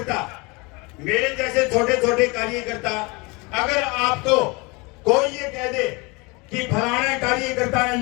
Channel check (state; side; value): quieter; right; 27.0 dB